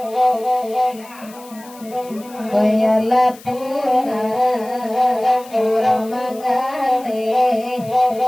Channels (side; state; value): left; noise; hiss, 21 dB below the sound